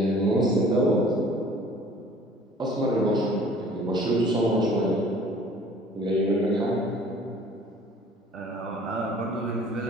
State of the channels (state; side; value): normal; both; correlation 0.51